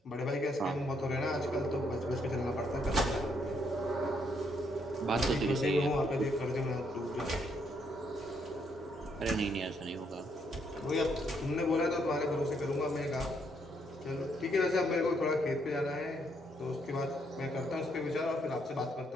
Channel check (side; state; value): both; normal; correlation 0.73